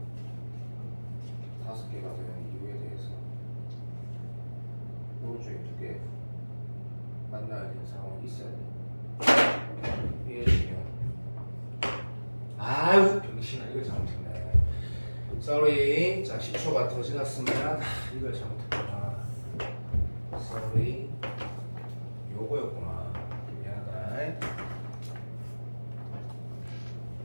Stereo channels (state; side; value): inverted; both; correlation -1.00